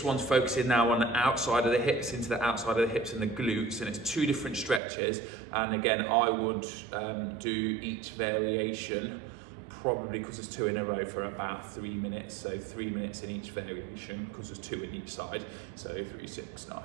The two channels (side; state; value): left; drops out; at 4.8 s